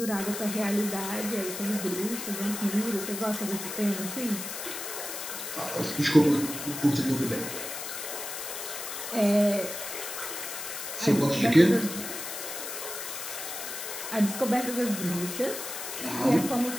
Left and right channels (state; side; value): noise; left; hiss, 7 dB below the sound